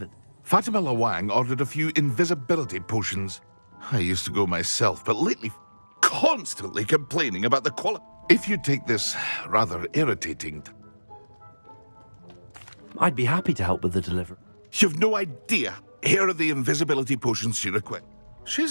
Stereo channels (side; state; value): both; inverted; correlation -1.00